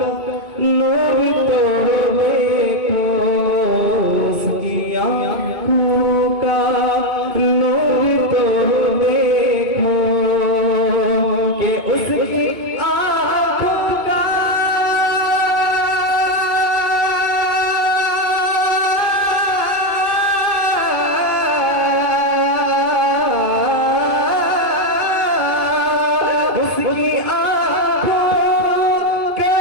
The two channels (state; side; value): late; left; 2.5 ms